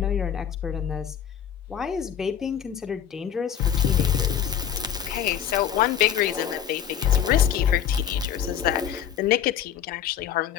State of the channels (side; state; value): right; quieter; 9.2 dB